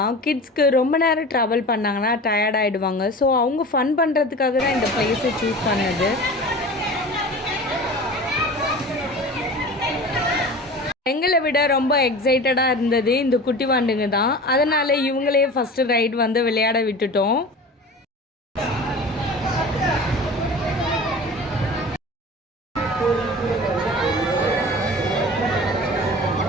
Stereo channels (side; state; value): both; normal; correlation 0.36